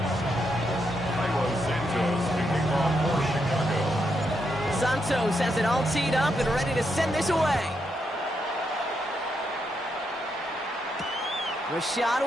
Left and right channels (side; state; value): both; normal; correlation 0.81